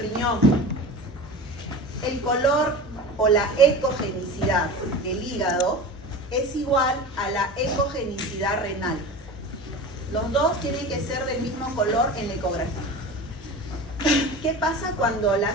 El color o la ecogenicidad del hígado es igual a la ecogenicidad renal. Los dos tienen que ser del mismo color en la ecografía. ¿Qué pasa cuando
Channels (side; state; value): both; normal; correlation 0.33